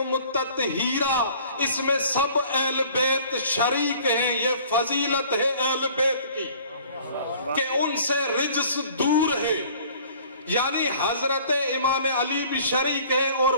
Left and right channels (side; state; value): both; inverted; correlation -0.52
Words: تطہیرا، اس میں سب اہل بیت شریک ہیں۔ یہ فضیلت ہے اہل بیت کی کہ ان سے رجس دور ہے، یعنی حضرت امام علی بھی شریک ہے اور